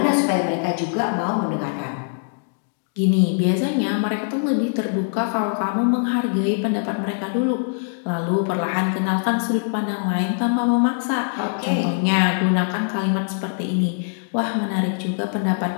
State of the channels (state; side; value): silent; right; digital silence